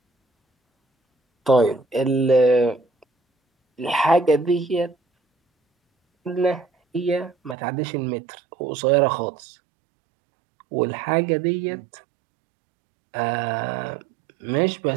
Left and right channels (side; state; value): left; drops out; at 7.6 s